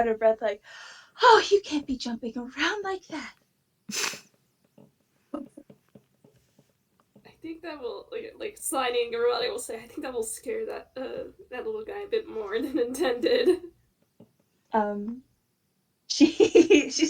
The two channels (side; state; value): both; identical; correlation 1.00